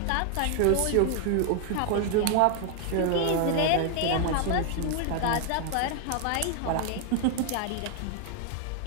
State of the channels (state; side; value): different; both; correlation 0.00